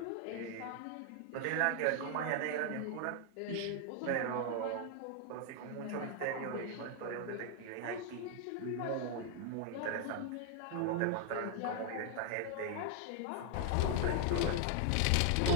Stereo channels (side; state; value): both; different; correlation 0.00